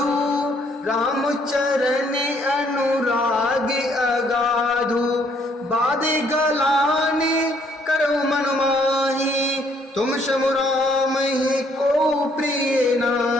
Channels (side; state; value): both; normal; correlation 0.66